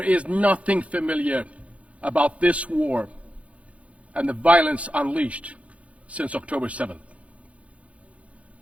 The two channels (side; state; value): left; late; 0.064 ms